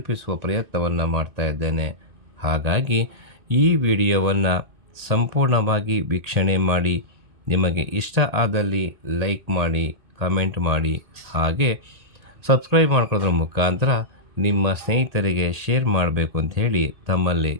ಪ್ರಯತ್ನವನ್ನು ಮಾಡ್ತಾ ಇದ್ದೇನೆ. ಹಾಗಾಗಿ ಈ ವಿಡಿಯೋವನ್ನು ಸಂಪೂರ್ಣವಾಗಿ ವೀಕ್ಷಣೆ ಮಾಡಿ, ನಿಮಗೆ ಇಷ್ಟ ಆದಲ್ಲಿ ಲೈಕ್ ಮಾಡಿ, ಕಮೆಂಟ್ ಮಾಡಿ, ಹಾಗೆ ಸಬ್ಸ್ಕ್ರೈಬ್ ಮಾಡ್ಕೊಳ್ಳೋದ್ರ ಮುಖಾಂತರ ನಿಮ್ಮ ಸ್ನೇಹಿತರಿಗೆ ಶೇರ್ ಮಾಡಬೇಕು ಅಂತ ಹೇಳಿ ತಮ್ಮಲ್ಲಿ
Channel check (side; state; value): left; late; 1.8 ms